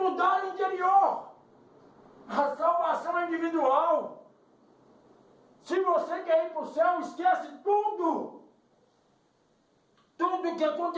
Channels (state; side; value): identical; both; correlation 1.00